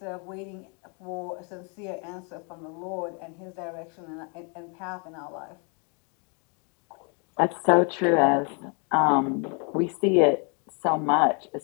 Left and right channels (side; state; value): right; quieter; 36.2 dB